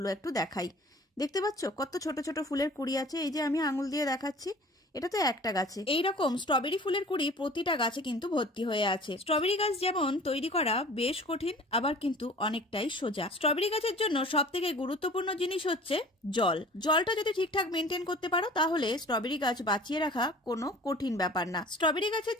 একটু দেখাই। দেখতে পাচ্ছ কত ছোট ছোট ফুলের কুঁড়ি আছে, এই যে আমি আঙুল দিয়ে দেখাচ্ছি, এটা তো একটা গাছে। এইরকম স্ট্রবেরি ফুলের কুঁড়ি প্রতিটা গাছে কিন্তু ভর্তি হয়ে আছে। স্ট্রবেরি গাছ যেমন তৈরি করা বেশ কঠিন, আবার কিন্তু অনেকটাই সোজা। স্ট্রবেরি গাছের জন্য সব থেকে গুরুত্বপূর্ণ জিনিস হচ্ছে জল। জলটা যদি ঠিকঠাক মেনটেন করতে পারো তাহলে স্ট্রবেরি গাছ বাঁচিয়ে রাখা কোনো কঠিন ব্যাপার না। স্ট্রবেরি গাছের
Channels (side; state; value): both; normal; correlation 0.45